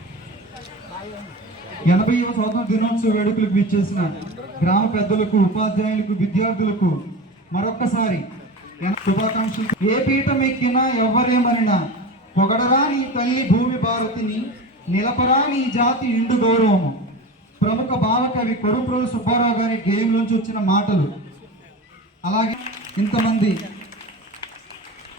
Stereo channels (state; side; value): normal; both; correlation 0.30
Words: 80వ స్వాతంత్ర దినోత్సవ వేడుకలకు విచ్చేసిన గ్రామ పెద్దలకు, ఉపాధ్యాయులకు, విద్యార్థులకు మరొక్కసారి శుభాకాంక్షలు. ఏ పీఠం ఎక్కినా ఎవ్వరేమనినా పొగడరా నీ తల్లి భూమి భారతిని, నిలపరా నీ జాతి నిండు గౌరవము. ప్రముఖ భావకవి కొడుప్రోలు సుబ్బారావు గారి గేయంలోంచి వచ్చిన మాటలు. అలాగే ఇంతమంది